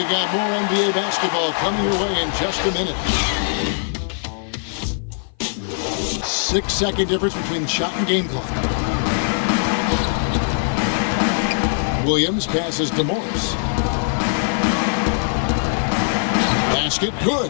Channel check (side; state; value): right; silent; 57 dB below the other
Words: got more NBA basketball coming your way in just a minute. 6-second difference between shot and game clock. Williams passes to Morris. Basket good.